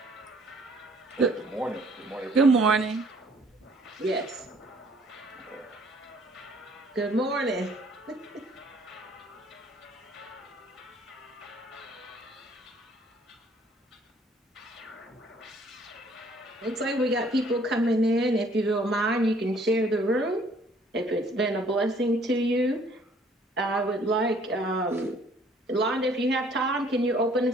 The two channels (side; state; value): both; normal; correlation 0.60